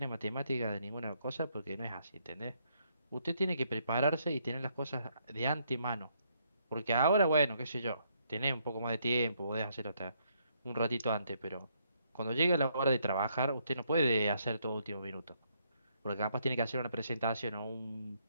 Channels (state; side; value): inverted; both; correlation -0.73